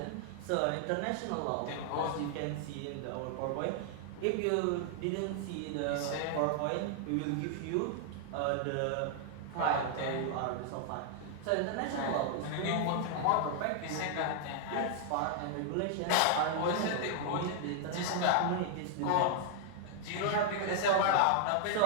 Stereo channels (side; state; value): both; different; correlation 0.00